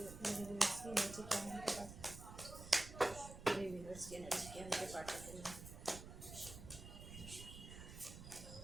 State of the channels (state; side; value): noise; right; rumble, 12 dB below the sound